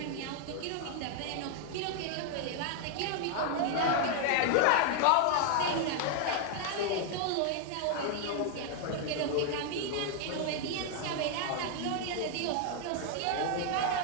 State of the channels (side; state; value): both; different; correlation 0.00